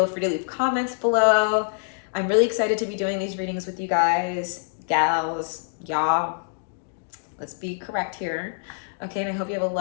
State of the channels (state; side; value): silent; right; digital silence